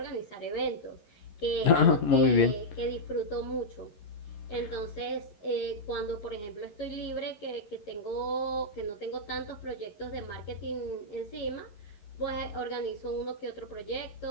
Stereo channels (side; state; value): right; late; 11 ms